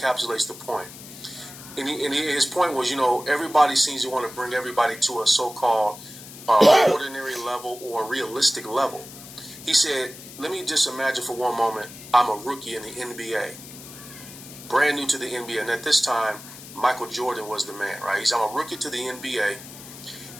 the point. And his point was, everybody seems to want to bring everybody to a so-called ordinary level or realistic level. He said, let me just imagine for one moment, I'm a rookie in the NBA, brand new to the NBA. And at this time, Michael Jordan was the man, right? He said, I'm a rookie to the NBA,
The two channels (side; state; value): left; noise; hiss, 15 dB below the sound